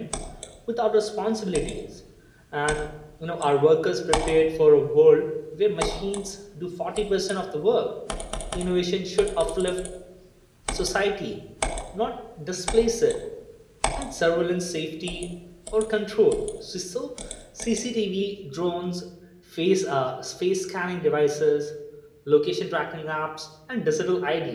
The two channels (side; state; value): both; identical; correlation 1.00